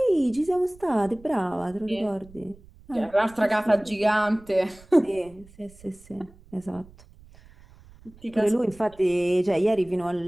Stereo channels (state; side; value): noise; right; rumble, 24 dB below the sound